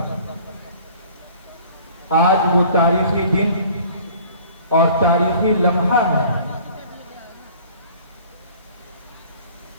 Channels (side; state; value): both; inverted; correlation -0.50